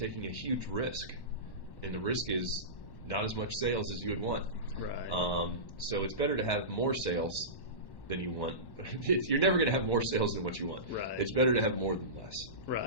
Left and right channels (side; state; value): right; late; 1.1 ms